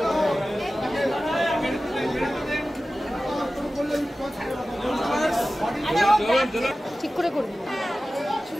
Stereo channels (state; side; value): normal; both; correlation 0.95